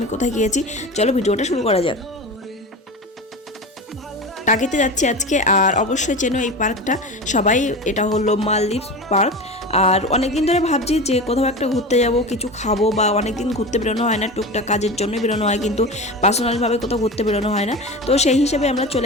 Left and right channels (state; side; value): normal; both; correlation 0.28